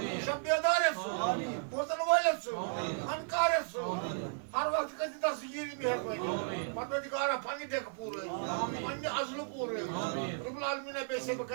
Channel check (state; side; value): silent; left; 55 dB below the other